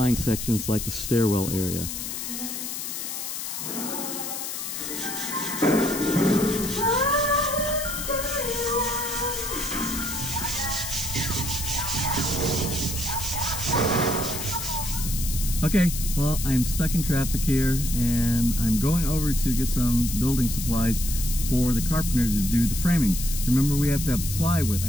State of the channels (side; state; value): left; noise; hiss, 5 dB below the sound